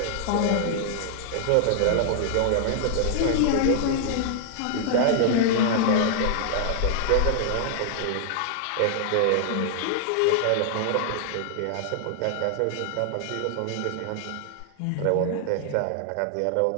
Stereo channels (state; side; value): different; both; correlation 0.00